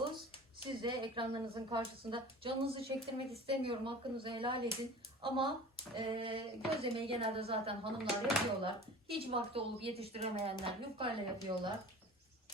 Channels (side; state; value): both; normal; correlation 0.39